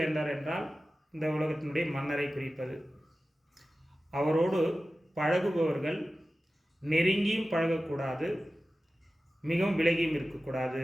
என்றால் இந்த உலகத்தினுடைய மன்னரை குறிப்பது. அவரோடு பழகுபவர்கள் நெருங்கியும் பழகக்கூடாது, மிகவும் விலகியும்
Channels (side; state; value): both; normal; correlation 0.95